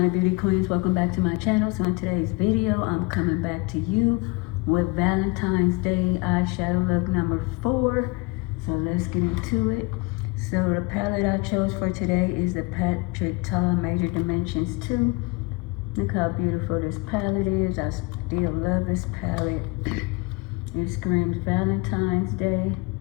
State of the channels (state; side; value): quieter; right; 25.3 dB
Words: beauty queens, welcome back to my channel. So in today's video I'm coming back to you with Valentine's Day eyeshadow look number 4. So let's get into it. So the palette I chose for today is the Patrick Ta Major Dimensions 2. Look how beautiful this palette is. I still love this palette. It screams Valentine's Day.